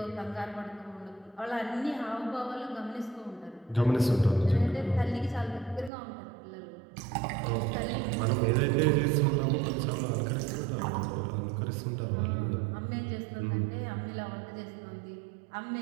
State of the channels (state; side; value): drops out; left; at 5.9 s